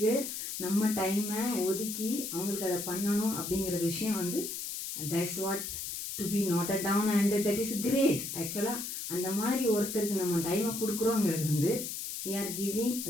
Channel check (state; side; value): noise; left; hiss, 5 dB below the sound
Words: நம்ம டைமை ஒதுக்கி அவங்களுக்கு அதை பண்ணணும் அப்படிங்கிற விஷயம் வந்து that's what to be noted down and that is great. ஆக்சுவலாக அந்த மாதிரி ஒருத்தருக்கு நம்ம டைமை கொடுக்குறோங்கிறது வந்து we are giving